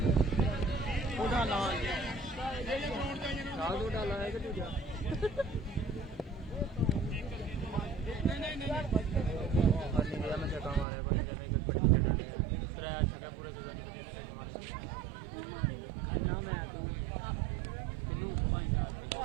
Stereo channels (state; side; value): drops out; left; at 10.9 s